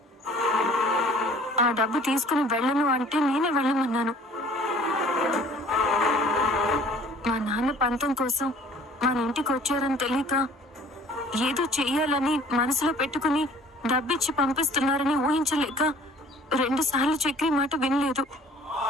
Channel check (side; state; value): both; normal; correlation 0.52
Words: ఆ డబ్బు తీసుకుని వెళ్ళను అంటే నేనే వెళ్ళమన్నాను. మా నాన్న పంతం కోసం మన ఇంటికి వచ్చారని తెలియక ఏదో చెయ్యాలని మనసులో పెట్టుకుని డబ్బిచ్చి పంపిస్తున్నారని ఊహించలేక 2 సార్లు చక్రి మాట వినలేదు.